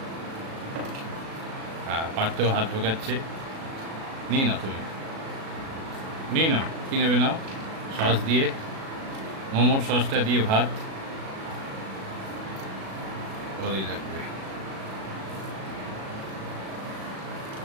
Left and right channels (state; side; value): late; left; 37 ms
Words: হ্যাঁ, পারতেও হাত ঢোকাচ্ছে। নিয়ে নাও, তুমি নিয়ে নাও, কী নেবে নাও। সস দিয়ে, মোমোর সসটা দিয়ে ভাত ভালোই লাগবে।